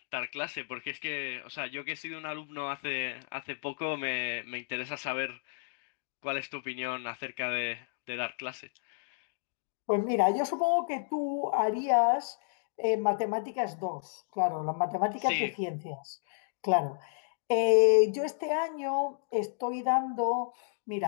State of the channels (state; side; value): silent; right; digital silence